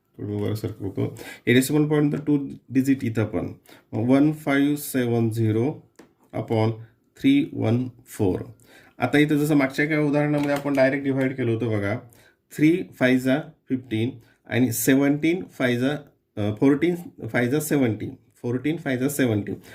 थोडं वर सरकवतो हे डेसिमल पॉईंट तर 2 डिजिट इथं पण 1570 अपॉन 314. आता इथं जसं मागच्या काही उदाहरणामध्ये आपण डायरेक्ट डिव्हाइड केलं होतं बघा 3 5 जा 15 आणि 17 5 जा 14 5 जा 17 14 5 जा 17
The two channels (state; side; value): identical; both; correlation 1.00